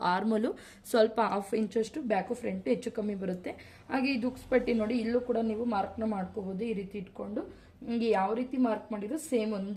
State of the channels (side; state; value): both; identical; correlation 1.00